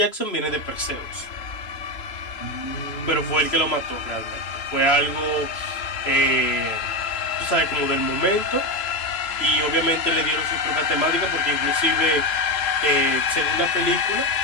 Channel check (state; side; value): late; right; 3.0 ms